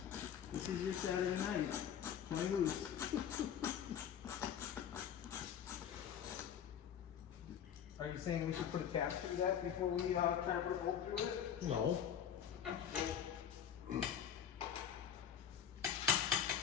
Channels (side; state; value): right; quieter; 8.9 dB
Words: your Saturday night. Play loose. Are you saying we should put a cap through that before we try to put a bolt through it? No.